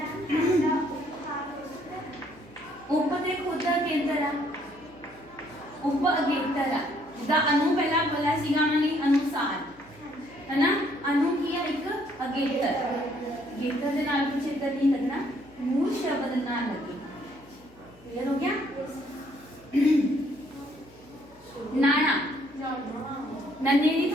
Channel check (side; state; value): left; noise; hum, 27 dB below the sound